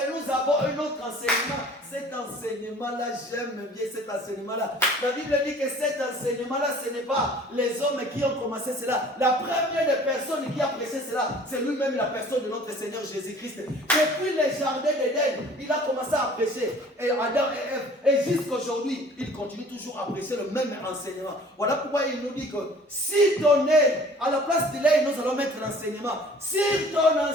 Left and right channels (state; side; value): normal; both; correlation 0.50